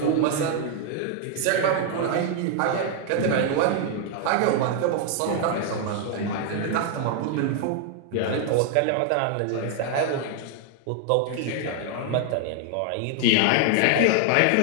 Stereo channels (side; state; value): both; different; correlation 0.00